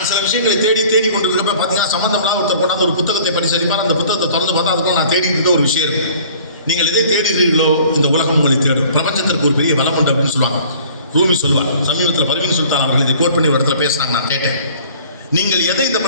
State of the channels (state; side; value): inverted; both; correlation -0.51